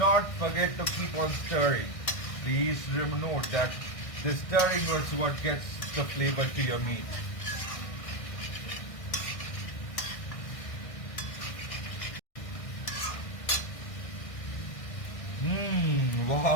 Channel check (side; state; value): right; late; 1.6 ms